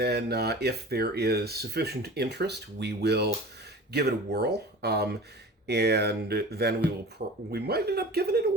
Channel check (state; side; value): normal; both; correlation 0.38